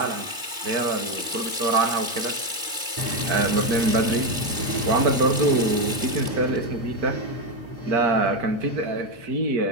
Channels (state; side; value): late; left; 2.5 ms